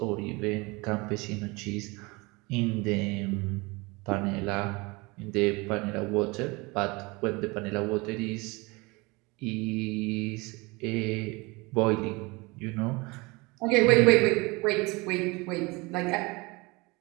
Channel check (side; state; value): left; quieter; 25.2 dB